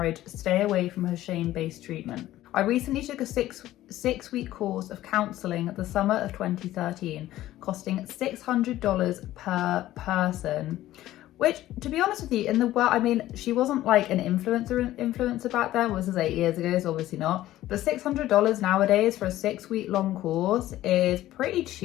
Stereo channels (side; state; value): right; quieter; 14.6 dB